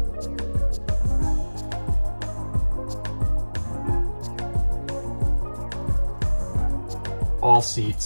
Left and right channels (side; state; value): both; inverted; correlation -1.00